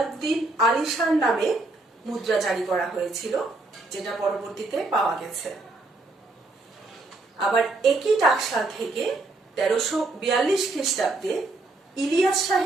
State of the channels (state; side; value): quieter; left; 3.1 dB